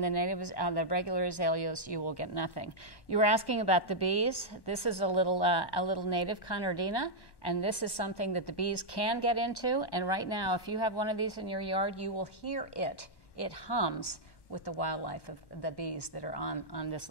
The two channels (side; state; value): right; late; 1.1 ms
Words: the regular azaleas, you will get nothing. You were asking about the bees. This is a little native Conardina, and this is something that the bees can get into. And right now, if you have one of these in your yard, you will hear it. It hums with the wildlife of the bees that are on this